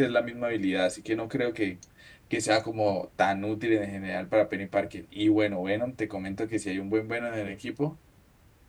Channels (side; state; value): both; identical; correlation 1.00